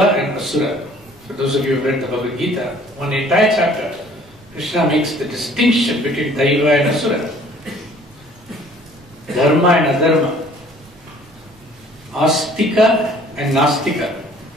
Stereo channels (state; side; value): noise; right; rumble, 27 dB below the sound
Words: and Asura. For those of you who have read the Bhagavad Gita, one entire chapter, Krishna makes the distinction between Daiva and Asura, Dharma and Adharma, Astika and Nastika,